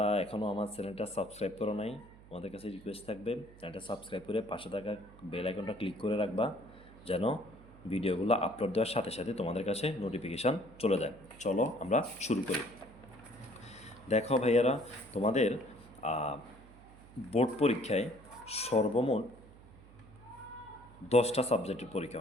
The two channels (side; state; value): right; noise; hum, 21 dB below the sound